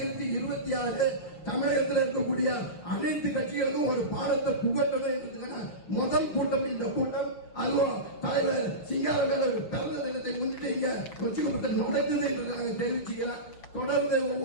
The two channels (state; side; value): late; right; 6.3 ms